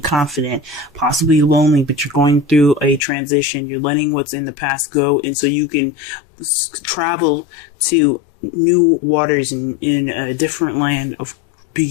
confident, possibly lonely, but you're going through a transition. You're letting what's in the past go, and so you can travel to new waters in a different land of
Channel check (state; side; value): drops out; right; at 3.0 s